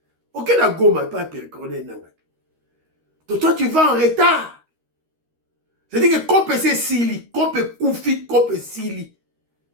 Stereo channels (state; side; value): late; left; 13 ms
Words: Ok na goma pas Corneille Nanga. Toi tu vas en retard. C'est-à-dire que Kope c'est Sili, Kope Koufi, Kope Sili.